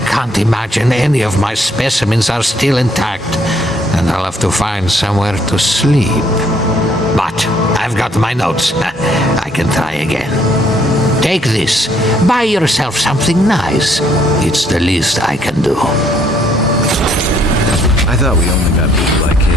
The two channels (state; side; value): normal; both; correlation 0.67